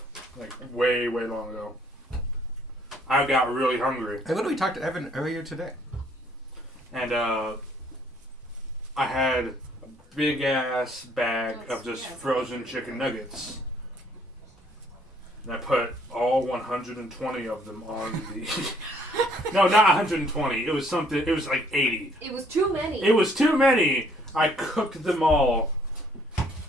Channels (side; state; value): both; normal; correlation 0.64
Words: like way long ago. I got really hungry, I literally talked to Evan earlier today. and I had a big ass bag of just frozen chicken nuggets. And I put all 120 of them on the. No, not 120. It was something. It was like 80. It was too many. It was too many. I cooked them all,